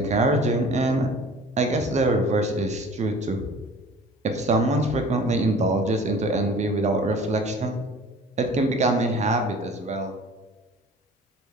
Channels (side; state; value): both; normal; correlation 0.46